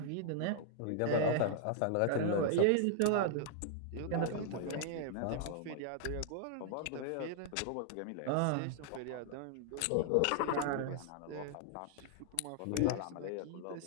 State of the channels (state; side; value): different; both; correlation 0.00